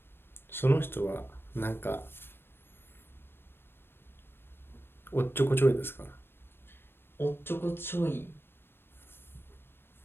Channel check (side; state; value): right; late; 0.10 ms